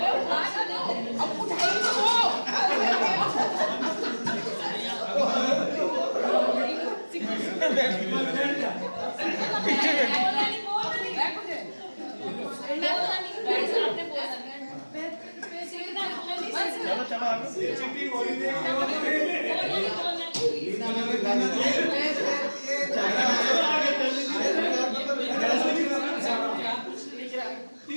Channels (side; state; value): both; inverted; correlation -1.00